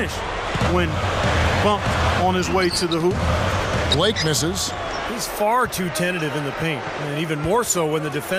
when bumped on his way to the hoop. Blake misses. He's far too tentative in the paint, and even more so when the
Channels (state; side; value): identical; both; correlation 1.00